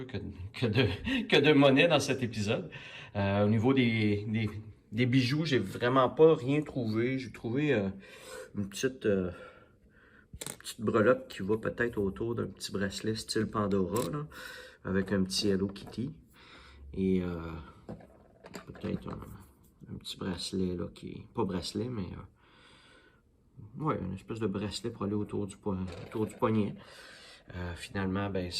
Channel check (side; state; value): both; identical; correlation 1.00